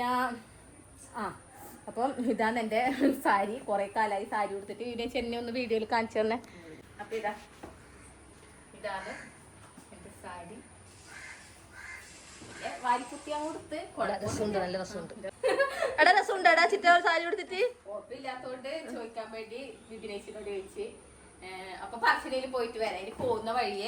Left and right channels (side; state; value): both; identical; correlation 1.00